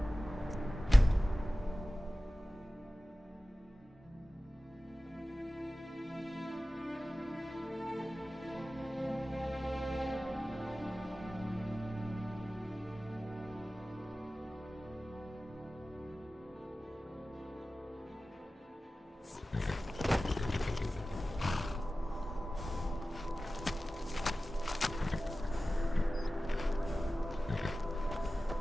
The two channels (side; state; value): both; normal; correlation 0.96